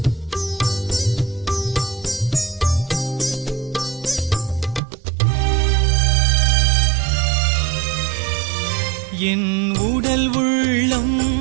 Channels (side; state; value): left; drops out; at 4.8 s